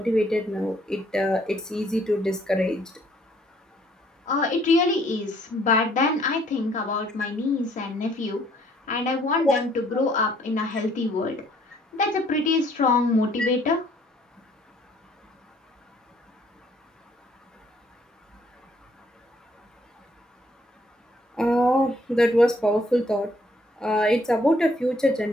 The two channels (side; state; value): both; normal; correlation 0.64